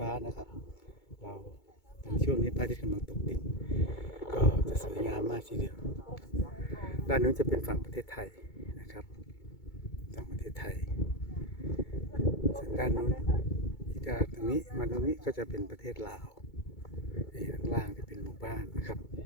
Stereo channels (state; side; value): late; right; 2.2 ms